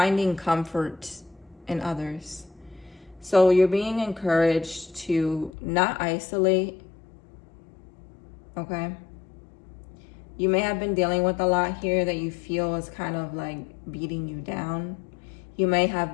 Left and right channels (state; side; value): drops out; right; at 5.5 s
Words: comfort in others. So you're being encouraged to not isolate, okay? You may have been dealing with a lot here that you feel is kind of like beating you down. You may